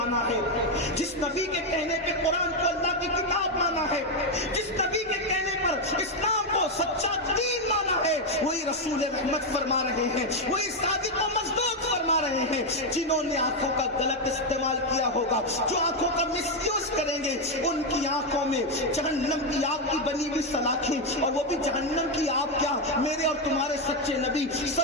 ہے، جس نبی کے کہنے پہ قرآن کو اللہ کی کتاب مانا ہے، جس نبی کے کہنے پر اسلام کو سچا دین مانا ہے، وہی رسول رحمت فرما رہے ہیں، وہی صادق و مصدوق فرما رہے ہیں. جنہوں نے آنکھوں کا غلط استعمال کیا ہوگا، جو آنکھوں کا مس یوز کریں گے، ان کی آنکھوں میں جہنم کی آگ کی بنی ہوئی سلاخیں، اور وہ بھی جہنم کی آگ کیا، میرے اور تمہارے سچے نبی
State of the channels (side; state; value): both; normal; correlation 0.05